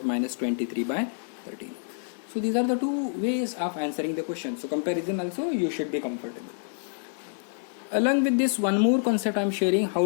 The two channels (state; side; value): silent; right; 60 dB below the other